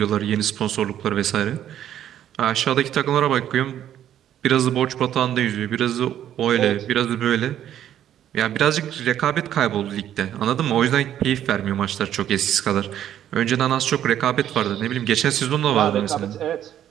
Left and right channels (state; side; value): quieter; left; 10.9 dB